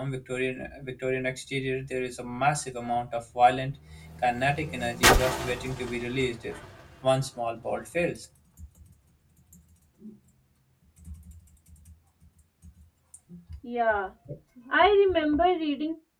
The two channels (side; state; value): both; identical; correlation 1.00